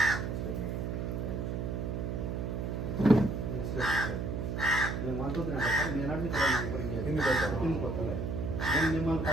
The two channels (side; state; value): right; noise; hum, 2 dB below the sound